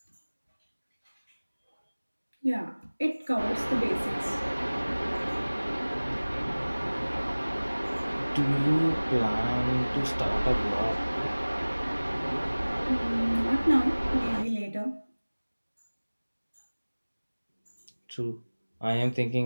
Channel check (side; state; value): both; inverted; correlation -1.00